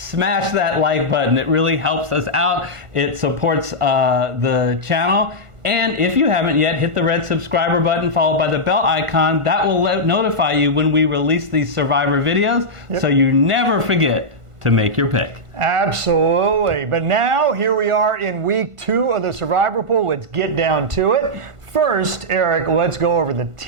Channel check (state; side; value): late; left; 1.5 ms